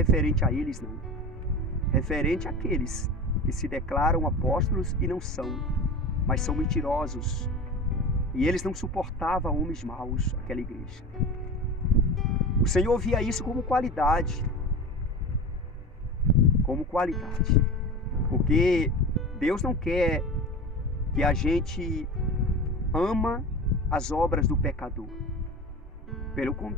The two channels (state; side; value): normal; both; correlation 0.31